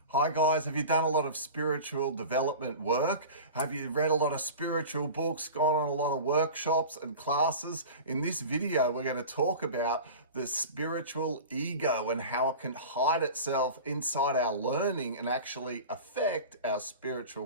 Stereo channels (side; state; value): both; inverted; correlation -0.34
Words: Hi guys, have you done a lot of spiritual development work? Have you read a lot of spiritual books, gone on a lot of workshops and classes? In this video, we're going to talk about the spiritual ego and how it can hide itself inside our learning and actually affect our spiritual